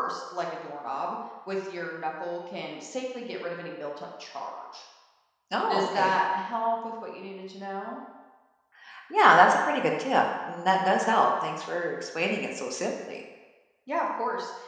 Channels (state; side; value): identical; both; correlation 1.00